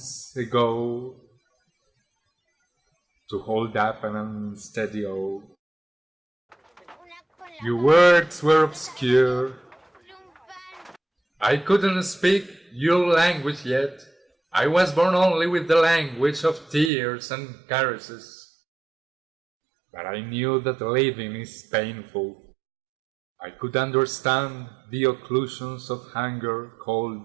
ago to hold up an unsteady oak. Your words were obscure. I couldn't speak your language yet. I was born only with the language of tears and caresses. But I knew that living is painful. I could understand the occlusions of hunger,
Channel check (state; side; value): drops out; left; at 16.9 s